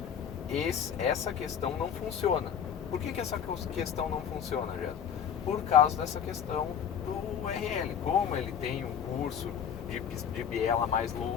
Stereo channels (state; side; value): quieter; right; 8.2 dB